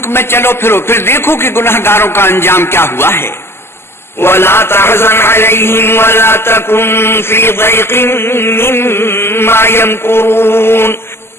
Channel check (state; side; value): late; right; 0.12 ms